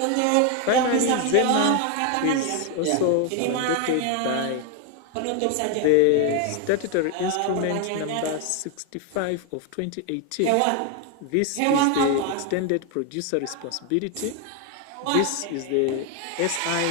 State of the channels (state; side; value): different; both; correlation 0.01